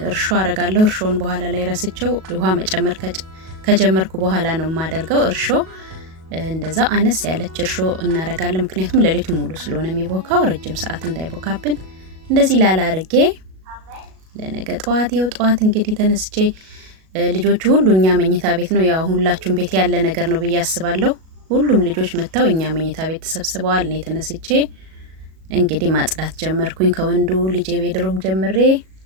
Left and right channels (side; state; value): left; late; 37 ms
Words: እርሾ አረጋለሁ። እርሾን በኋላ ላይ ረስቸው ውሃ መጨመር ከጀመርኩ በኋላ ነው ማደርገው። እርሾ እንደዛ አነስ ያለች እርሾ እናረጋለን ምክንያቱም ለሊቱ ሙሉ ስለሆነ የሚቦካው ረጅም ሰዓት እንዳይቦካብን እንደዚህ ላላ አርጌ ለነገ ጠዋት እንግዲህ ተነስቼ ልጆቹ ሁሉ እኛ መኝታ ቤት ነው ያው ሁላችሁም ቤት ያለ ነገር ነው ብዬ አስባለሁ። ሁሉም ልጆች መተው እኛ መኝታ ቤት ተሰብስበዋል። እኔ ተነስቼ እንግዲህ ማጽዳት ጀመርኩኝ ከወንዱ ልጄ ቤድሩም ጀምሬ